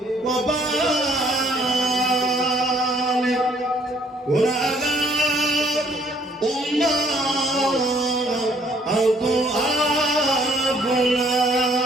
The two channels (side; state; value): both; normal; correlation 0.63